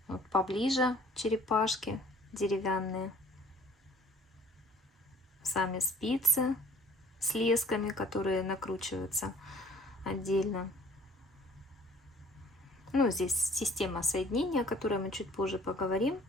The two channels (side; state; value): both; normal; correlation 0.54